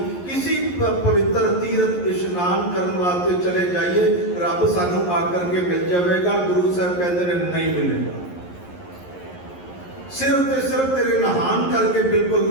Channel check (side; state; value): right; late; 11 ms